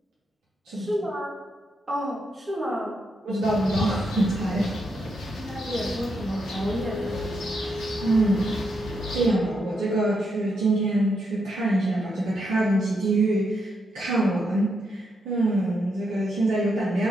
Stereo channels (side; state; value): both; normal; correlation 0.80